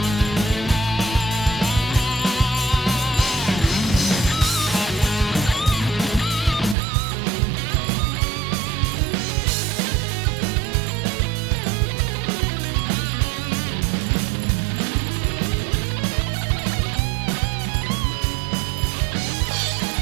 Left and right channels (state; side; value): drops out; left; at 6.8 s